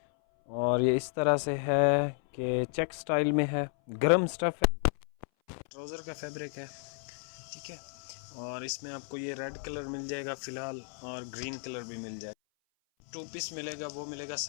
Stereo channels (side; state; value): right; silent; 56 dB below the other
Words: और ये इस तरह से है कि चेक स्टाइल में है, गर्म स्टफ़ है, ट्राउज़र का फैब्रिक है, ठीक है। और इसमें आपको ये रेड कलर मिल जाएगा फ़िलहाल और ग्रीन कलर भी मिल जाएगा। 2 पीस मिलेगा, वो मिलेगा